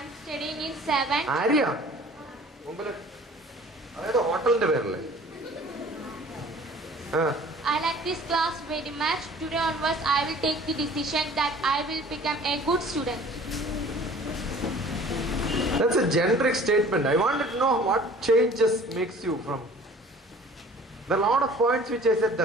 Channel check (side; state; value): both; normal; correlation 0.48